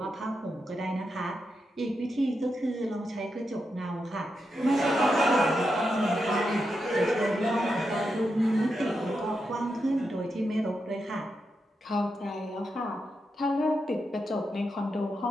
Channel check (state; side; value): normal; both; correlation 0.86